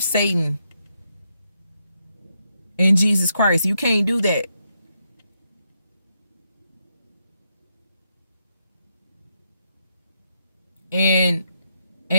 Satan and Jesus Christ. You can't do that. And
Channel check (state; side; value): inverted; both; correlation -0.80